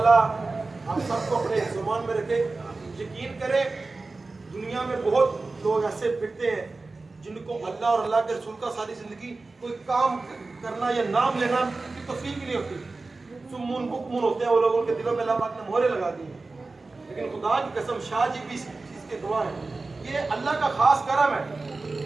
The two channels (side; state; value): left; quieter; 3.6 dB